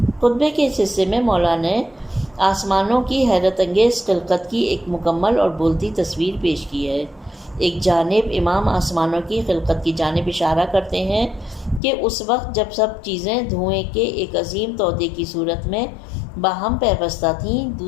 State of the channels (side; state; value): right; drops out; at 11.8 s